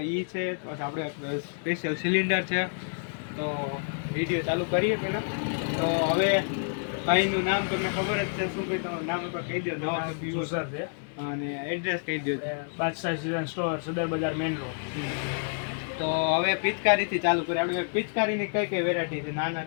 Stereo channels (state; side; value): silent; right; 59 dB below the other